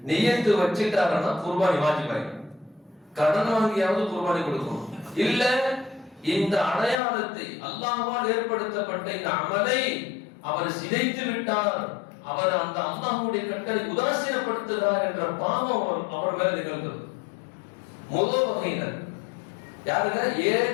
நியத்து வச்சுட்டாருன்னா குர்பானி வாஜிபாயிடும். கடன் வாங்கியாவது குர்பானி கொடுக்கணும். இல்ல இந்த அடையாளத்தை அல்லாஹ்வால் ஏற்படுத்தப்பட்ட இந்த அமலை அவர் சிதைத்து விட்டார், அவர் அந்த அல்லாஹ்வுடைய கட்டளை உதாசீனப்படுத்துகிறார் என்ற பாவம் அவர் மேல நிகழ்ந்தது. முதல் வகையினர் யாருங்க?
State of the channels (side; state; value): right; drops out; at 7.0 s